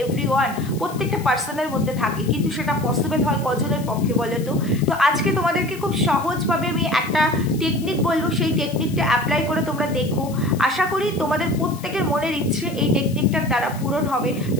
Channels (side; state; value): left; noise; hiss, 18 dB below the sound